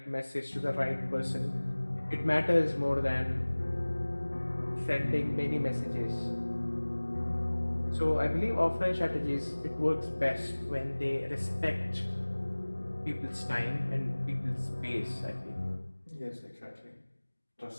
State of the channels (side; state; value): both; inverted; correlation -1.00